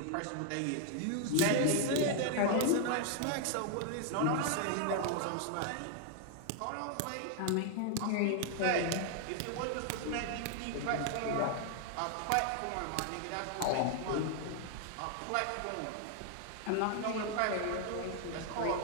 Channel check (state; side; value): different; both; correlation 0.00